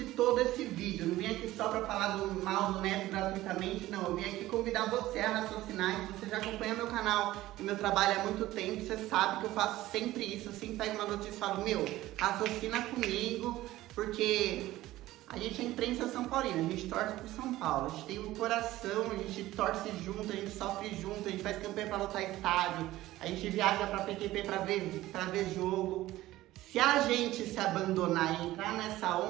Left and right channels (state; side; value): quieter; left; 16.2 dB